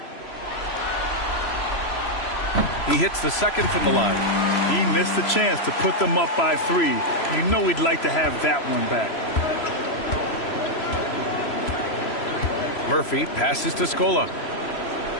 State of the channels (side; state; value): right; late; 3.0 ms